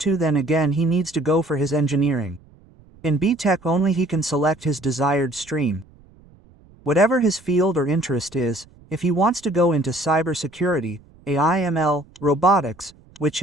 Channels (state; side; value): noise; right; rumble, 27 dB below the sound